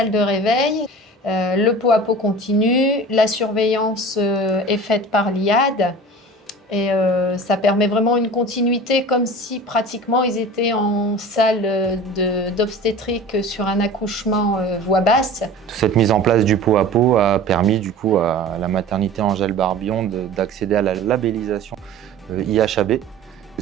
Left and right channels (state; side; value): normal; both; correlation 0.39